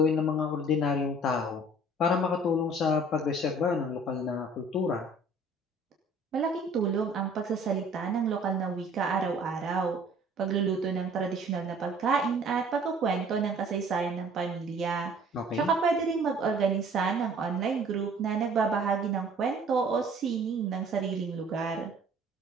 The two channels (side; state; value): both; normal; correlation 0.52